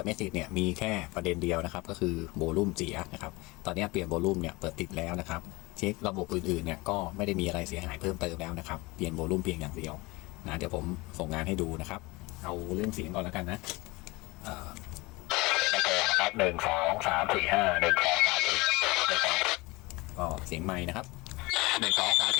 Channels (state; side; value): quieter; right; 23.5 dB